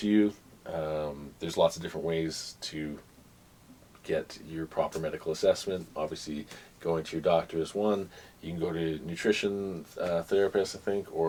you. There's lots of different ways to get your proper medical assessment. Obviously, going to your doctor is one. You can go to a nutrition therapist, I think,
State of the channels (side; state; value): both; identical; correlation 1.00